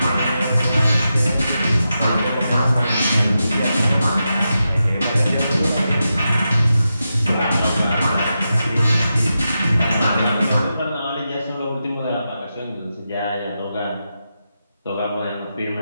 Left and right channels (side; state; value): both; inverted; correlation -0.89